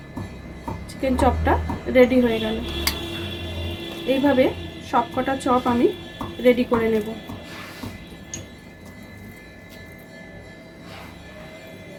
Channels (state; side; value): identical; both; correlation 1.00